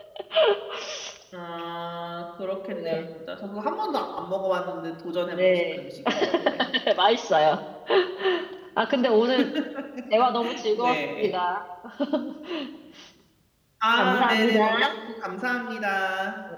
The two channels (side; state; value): both; identical; correlation 1.00